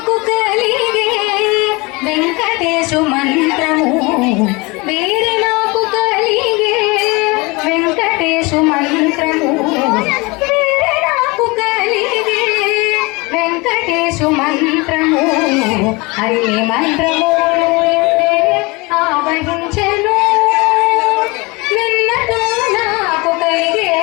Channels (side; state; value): right; quieter; 25.6 dB